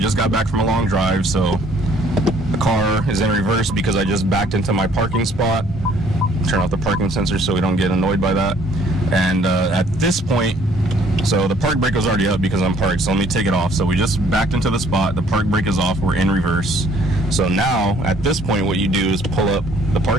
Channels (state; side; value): normal; both; correlation 0.60